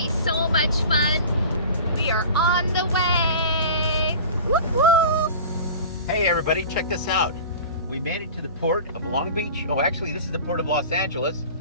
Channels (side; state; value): both; inverted; correlation -0.38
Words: so much fun. We are on the way! Whoop whoop! Hey everybody, check this out. We made it to the port of Long Beach. Oh, actually this is the port of Los Angeles.